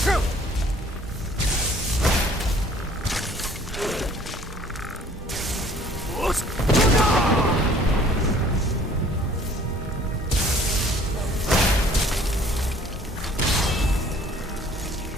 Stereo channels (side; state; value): both; normal; correlation 0.55